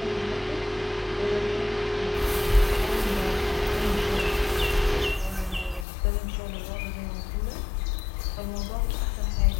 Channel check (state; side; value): drops out; right; at 5.9 s